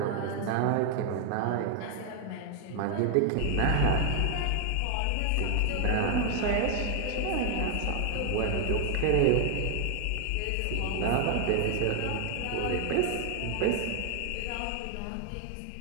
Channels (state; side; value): different; both; correlation 0.00